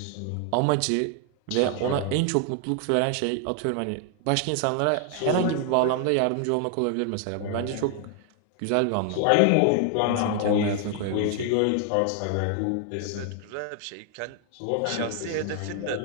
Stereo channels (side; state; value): both; different; correlation 0.00